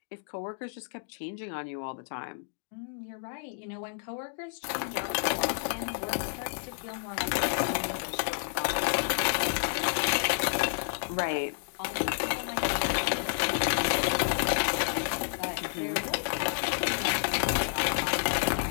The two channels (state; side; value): silent; right; digital silence